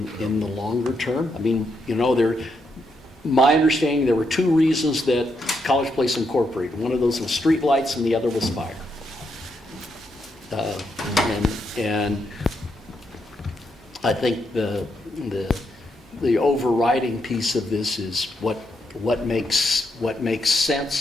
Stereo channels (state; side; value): normal; both; correlation 0.80